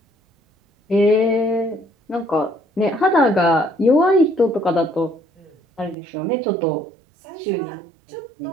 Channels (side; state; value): left; drops out; at 6.0 s